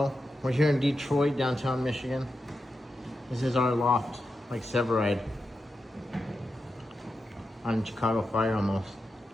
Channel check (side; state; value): both; normal; correlation 0.88